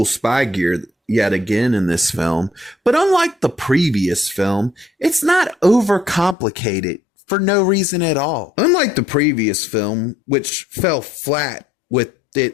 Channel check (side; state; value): right; drops out; at 6.4 s